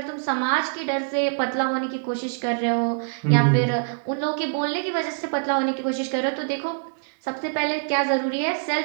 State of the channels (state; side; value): silent; left; digital silence